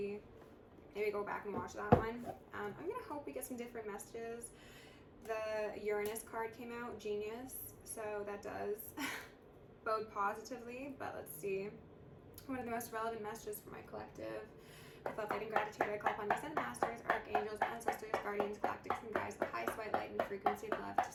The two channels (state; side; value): identical; both; correlation 1.00